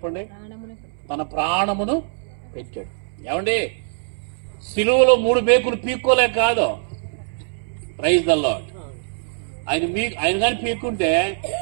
తన ప్రాణమును పెట్టాడు. ఏమండి, సిలువలో 3 మేకులు పీక్కోలే కాదు. Praise the lord. ఆయన కానీ పీక్కుంటే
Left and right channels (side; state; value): left; silent; 64 dB below the other